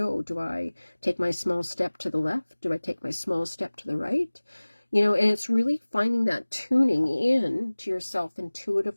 Do I take my small step to the left? Do I take my small step to the right? You know, and it's really finding that tuning in to yourself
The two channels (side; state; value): both; inverted; correlation -1.00